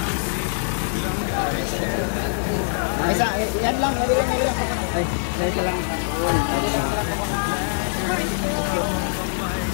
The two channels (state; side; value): silent; right; 63 dB below the other